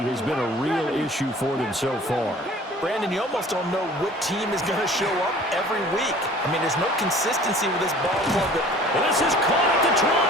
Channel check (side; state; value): both; normal; correlation 0.48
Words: been a real issue for them so far. Brandon, you almost don't know what team is going to show up every week. I mean, there's no consistency with this ball club. And this is caught at the 20.